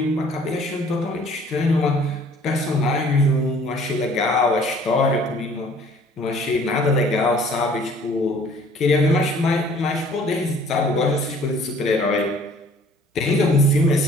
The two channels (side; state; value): both; normal; correlation 0.54